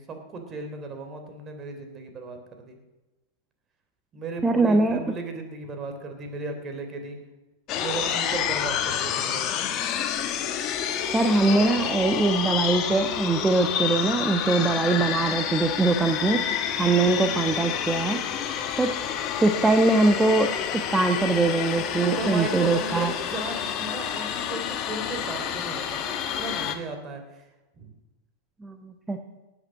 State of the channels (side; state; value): both; normal; correlation 0.55